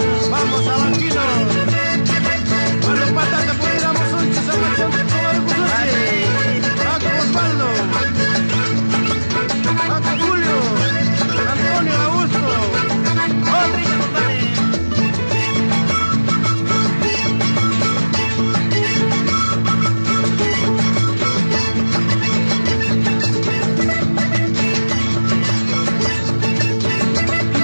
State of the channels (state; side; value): inverted; both; correlation -1.00